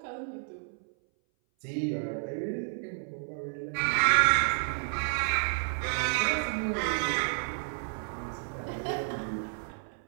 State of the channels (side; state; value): left; silent; 57 dB below the other